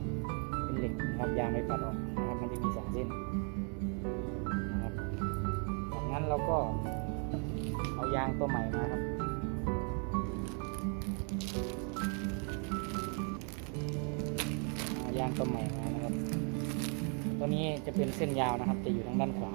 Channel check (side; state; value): left; quieter; 38.9 dB